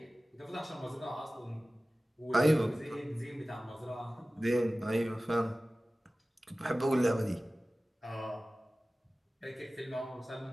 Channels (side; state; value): both; normal; correlation 0.97